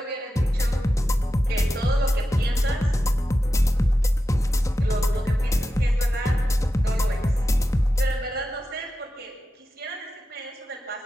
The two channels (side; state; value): both; normal; correlation 0.91